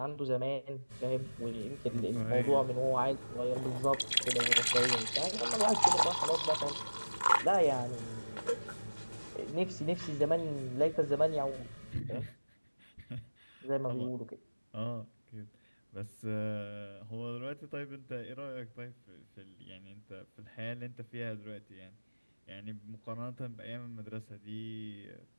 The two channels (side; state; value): both; inverted; correlation -1.00